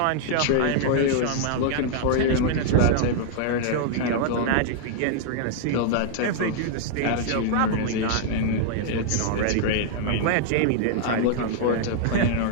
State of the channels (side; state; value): both; different; correlation -0.01